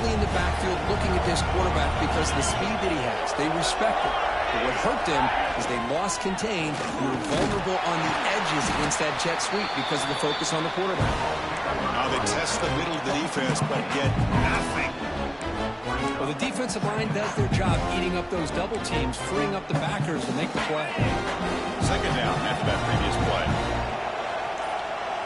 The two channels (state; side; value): identical; both; correlation 1.00